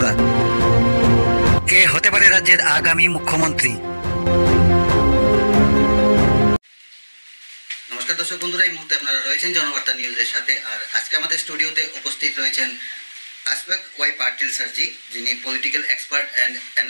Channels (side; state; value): both; inverted; correlation -1.00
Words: কে হতে পারে রাজ্যের আগামী মুখ্যমন্ত্রী? নমস্কার দর্শক বন্ধুরা, এই মুহূর্তে আপনারা রয়েছেন জনবার্তা নিউজের সাথে। আর আজকে আমাদের স্টুডিওতে উপস্থিত রয়েছেন আসফাক ওয়াই পাটিল স্যারজি, যিনি পলিটিক্যাল এক্সপার্ট অ্যান্ড